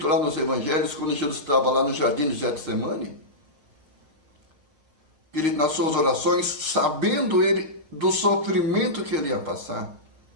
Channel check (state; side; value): late; left; 6.2 ms